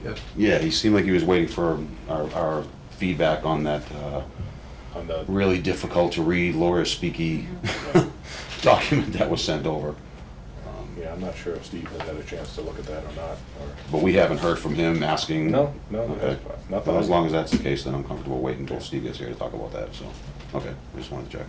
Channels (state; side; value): identical; both; correlation 1.00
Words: Yes. yeah, he seemed like he was waiting for our feedback on that, On the, really difficult to read, lawyer speaky document that was sent over. yeah, I'm not sure if Steve has had a chance to look at that or not, or. But we haven't heard from him asking. No, Okay. not Well, as that. long as that's the case, then I'm comfortable waiting until Steve gets here to talk about that, so, okay, I just wanted to check.